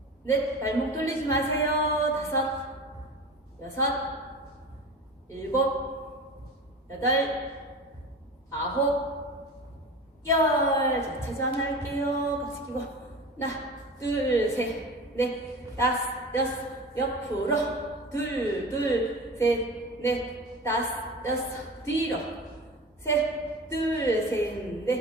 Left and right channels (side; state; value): both; normal; correlation 0.33